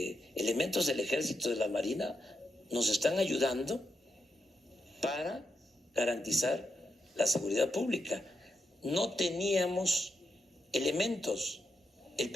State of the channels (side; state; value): both; normal; correlation 0.83